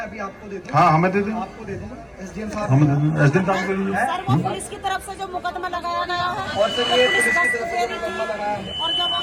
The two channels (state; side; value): identical; both; correlation 1.00